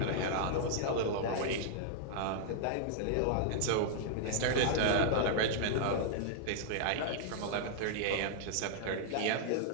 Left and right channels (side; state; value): both; different; correlation -0.01